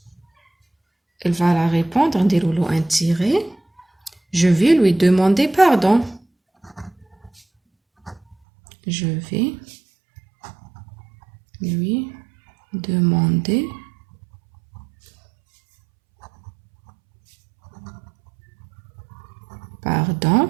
Elle va la répondre, نديرولو un tiré. Je vais lui demander pardon. Je vais lui demander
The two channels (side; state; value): left; drops out; at 8.3 s